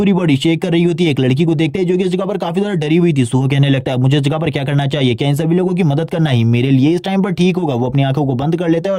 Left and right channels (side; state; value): both; identical; correlation 1.00